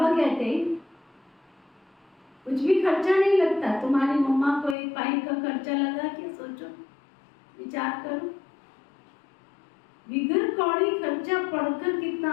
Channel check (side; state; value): right; drops out; at 4.8 s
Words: कहते हैं कुछ भी खर्चा नहीं लगता। तुम्हारी मम्मा को एक पाई का खर्चा लगा क्या? सोचो, विचार करो। बिगर कौड़ी खर्चा पढ़कर कितना